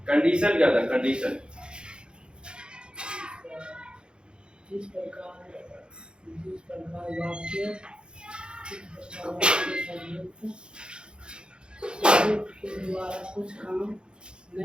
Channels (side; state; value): left; late; 0.051 ms